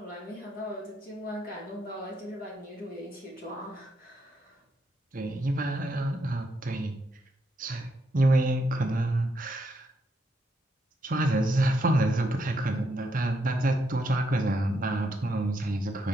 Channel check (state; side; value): normal; both; correlation 0.78